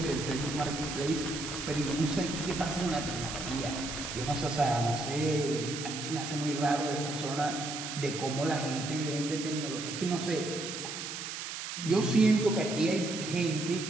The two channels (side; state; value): right; noise; hiss, 6 dB below the sound